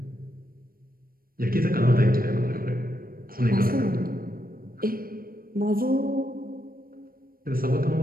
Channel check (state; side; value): late; left; 0.42 ms